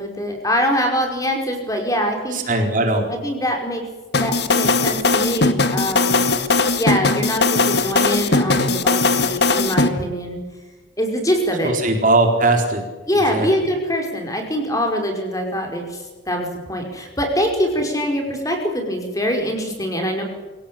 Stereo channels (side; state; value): both; normal; correlation 0.19